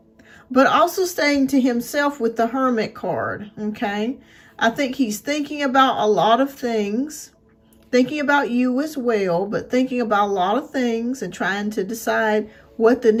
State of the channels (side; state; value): both; identical; correlation 1.00